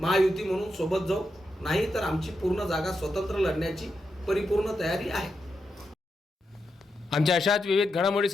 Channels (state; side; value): normal; both; correlation 0.85